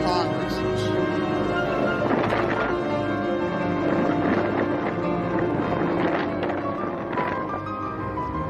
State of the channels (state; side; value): identical; both; correlation 1.00